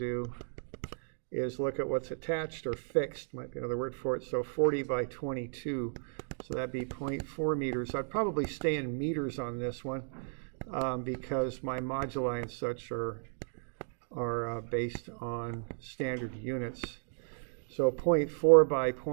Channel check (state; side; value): silent; left; digital silence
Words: is look at what's attached or fixed, might be another word for it. So 40 by 22, so that'd be 0.4 meters. I'd probably stay in meters on this one because my moduli and such are based on standard units. So 0.4 by